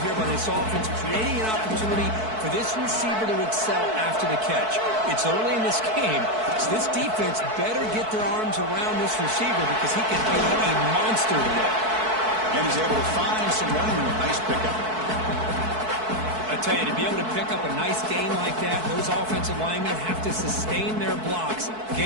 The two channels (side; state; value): left; late; 4.6 ms